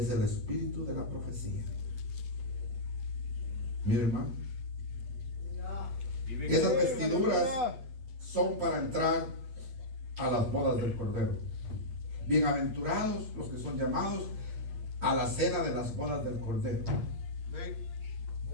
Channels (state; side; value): late; left; 8.4 ms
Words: el espíritu de la profecía. Mira, hermano, esas vestiduras son para entrar a las bodas del Cordero. Bienaventurados los que son llamados a la cena de las bodas del Cordero.